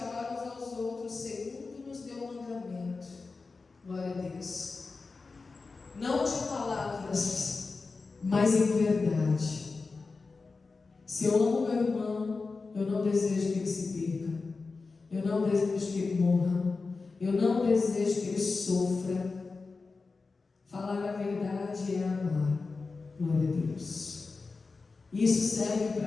uns aos outros segundo nos deu o mandamento, glória a Deus, não de palavras, mas em verdade. Se eu amo meu irmão, eu não desejo que ele se perca, eu não desejo que ele morra, eu não desejo que ele sofra. Falar a verdade é amar, glória a Deus. Isso serve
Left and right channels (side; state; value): right; quieter; 4.1 dB